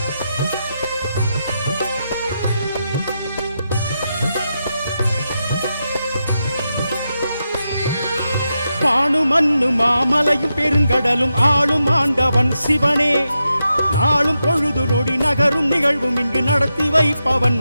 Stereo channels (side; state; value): both; inverted; correlation -0.87